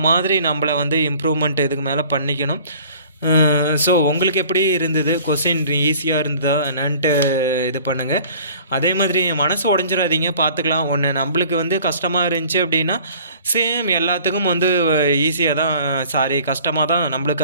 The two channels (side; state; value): both; inverted; correlation -0.50